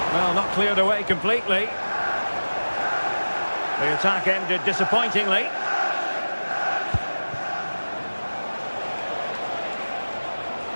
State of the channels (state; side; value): inverted; both; correlation -1.00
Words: Well, not cleared away completely. The attack ended disappointingly.